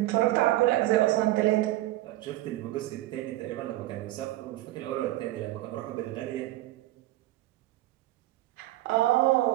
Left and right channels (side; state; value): left; quieter; 16.5 dB